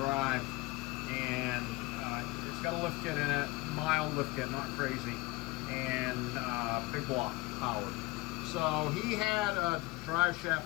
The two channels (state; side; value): quieter; right; 22.3 dB